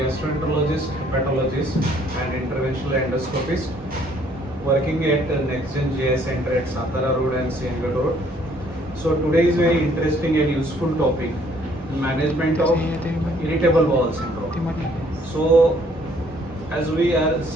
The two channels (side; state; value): both; normal; correlation 0.63